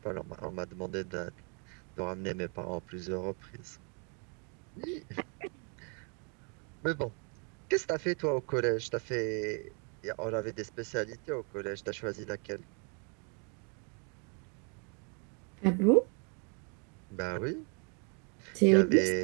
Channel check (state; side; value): quieter; left; 36.9 dB